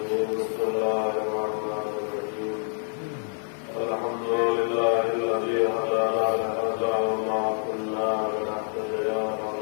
بسم الله الرحمن الرحيم الحمد لله الذي هدانا لهذا وما كنا لنهتدي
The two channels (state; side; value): silent; right; 60 dB below the other